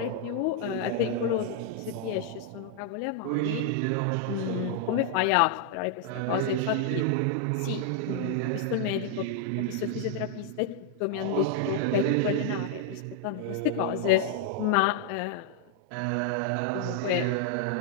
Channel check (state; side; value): different; both; correlation -0.01